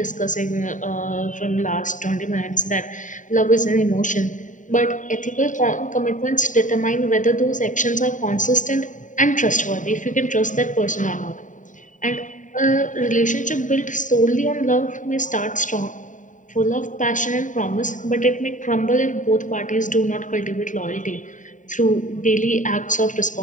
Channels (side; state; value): right; late; 0.37 ms